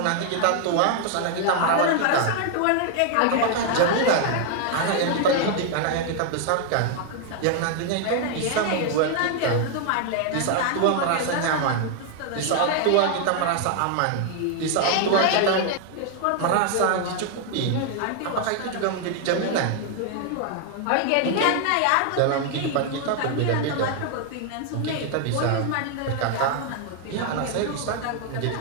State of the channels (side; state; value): both; different; correlation 0.00